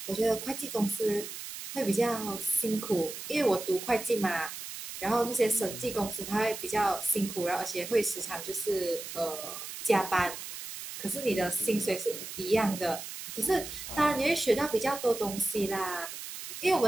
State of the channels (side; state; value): right; noise; hiss, 9 dB below the sound